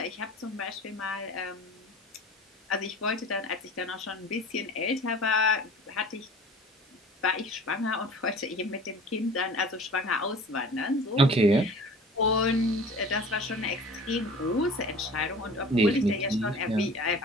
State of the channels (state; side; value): normal; both; correlation 0.42